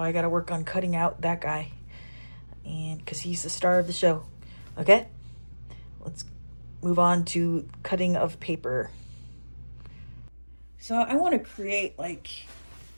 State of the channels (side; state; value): both; inverted; correlation -1.00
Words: I got to work on cutting out that guy. And because he's the star of the show. Okay? Let's move on to cutting of paper. So I want to create like